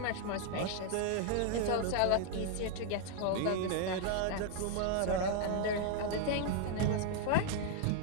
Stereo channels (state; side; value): different; both; correlation 0.00